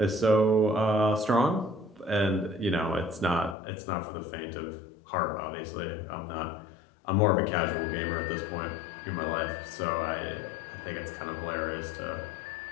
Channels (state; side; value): drops out; right; at 3.6 s